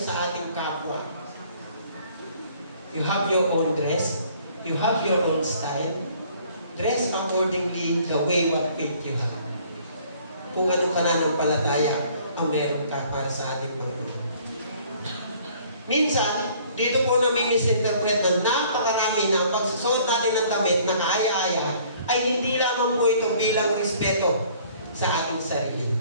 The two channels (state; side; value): inverted; both; correlation -0.57